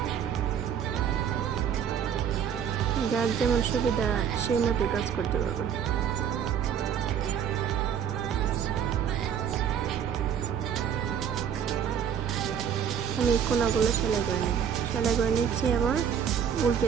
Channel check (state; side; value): quieter; left; 8.3 dB